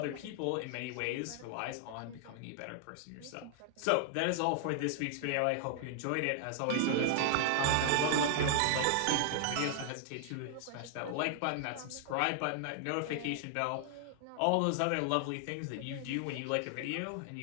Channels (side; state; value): both; different; correlation 0.00